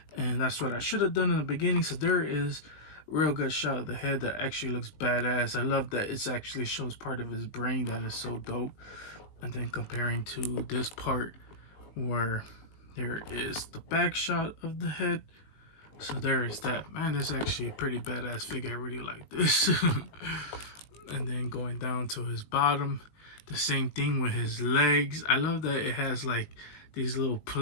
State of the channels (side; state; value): right; late; 19 ms